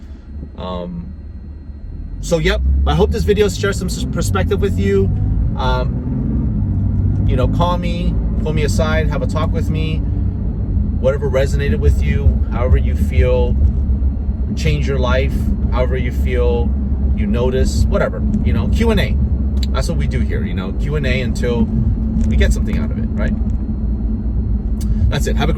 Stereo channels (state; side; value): identical; both; correlation 1.00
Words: So yep, I hope this video shares some perspective with you. You know, call me, pull me aside, have a talk with me. Whatever resonated with you, however you feel, change your life, however you feel, you notice, whatever, you know, Q&A. That's what we do here, you know, Q&A until we get something out of it, right? That's it. Have a